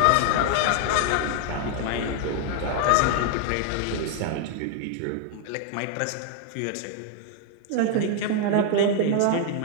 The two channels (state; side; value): different; both; correlation 0.00